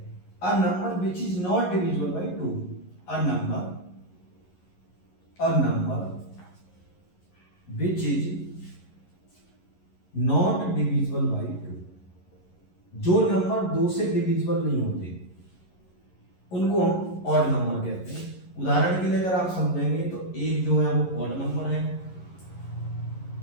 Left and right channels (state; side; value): late; right; 11 ms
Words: a number which is not divisible by two, a number which is not divisible by 2, जो नंबर दो से डिविजिबल नहीं होते उनको हम ऑड नंबर कहते हैं। उदाहरण के लिए अगर आप समझेंगे तो एक जो है वो ऑड नंबर है,